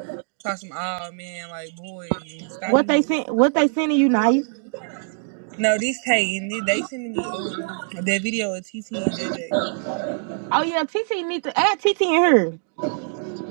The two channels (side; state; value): left; silent; digital silence